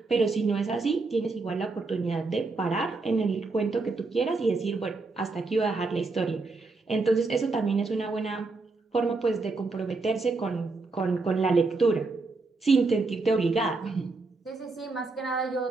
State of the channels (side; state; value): left; quieter; 3.7 dB